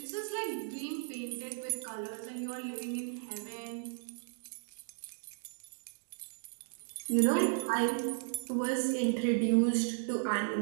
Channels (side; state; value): left; silent; digital silence